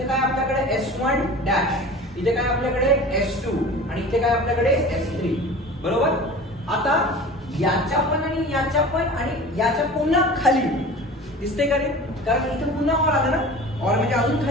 काय आपल्याकडे S1 डॅश, इथे काय आपल्याकडे S2 आणि इथे काय आपल्याकडे S3, बरोबर. आता याच्या पण आणि याच्या पण आणि याच्या पुन्हा खाली दिसते का रे, कारण इथे पुन्हा ऑर आलं ना, ऑर म्हणजे अजून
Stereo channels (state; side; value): normal; both; correlation 0.38